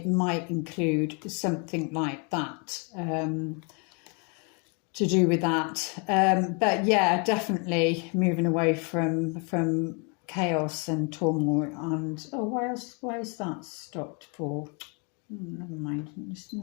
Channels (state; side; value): quieter; right; 34.9 dB